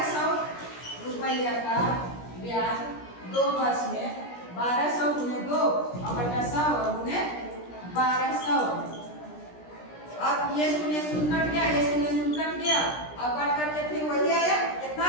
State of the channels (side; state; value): right; late; 17 ms